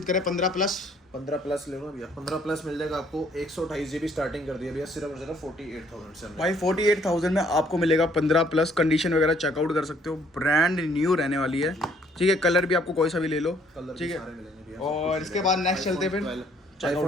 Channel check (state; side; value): normal; both; correlation 0.63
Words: करें 15 प्लस। 15 प्लस ले लो भैया, 15 प्लस मिल जाएगा आपको 128 GB स्टार्टिंग कर दिया भैया सिर्फ और सिर्फ 48,000 से हमने। भाई 48,000 में आपको मिलेगा 15 प्लस, कंडीशन वगैरह चेकआउट कर सकते हो, ब्रांड न्यू रहने वाली है, ठीक है। कलर भी आपको कोई सा भी ले लो, कलर ठीक है। सारे मिलेंगे भैया। और इसके बाद नेक्स्ट चलते हैं फिर